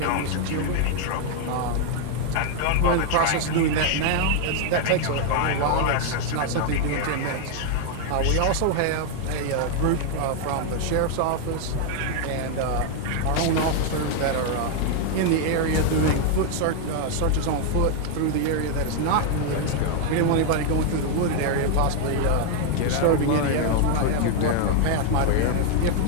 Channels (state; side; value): different; both; correlation 0.00